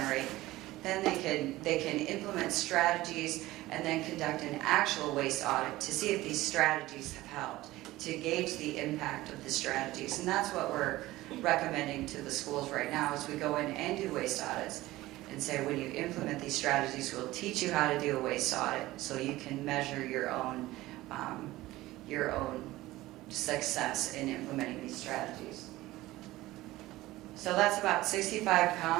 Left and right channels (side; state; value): left; quieter; 17.6 dB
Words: then they can implement strategies and then conduct an actual waste audit to see if these strategies have helped, to gauge the impact of the strategies. And that's what we're recommending to the schools right now as we go in and do waste audits and say, when you implement these strategies, we'll teach you how to do a waste audit so you can measure your own success in implementing these strategies. So that's about 65